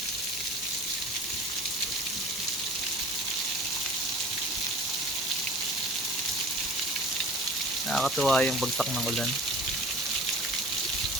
Nakakatuwa yung bagsak ng ulan.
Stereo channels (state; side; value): normal; both; correlation 0.42